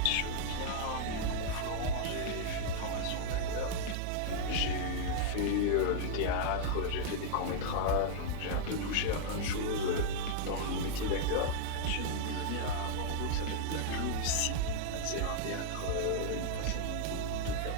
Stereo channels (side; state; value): both; different; correlation -0.01